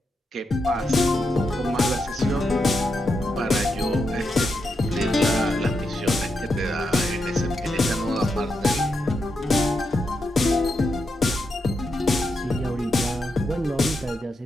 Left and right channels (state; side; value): normal; both; correlation 0.84